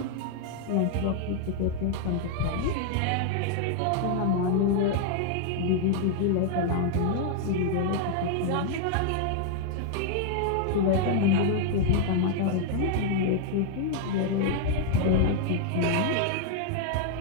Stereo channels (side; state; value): both; different; correlation 0.00